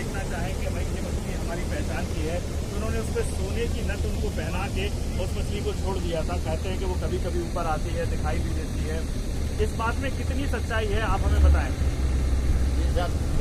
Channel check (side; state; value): both; identical; correlation 1.00